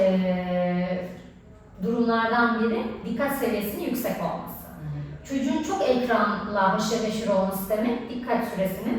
durumlardan biri dikkat seviyesinin yüksek olması. Çocuğun çok ekranla haşır neşir olması demek, dikkat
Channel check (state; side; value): identical; both; correlation 1.00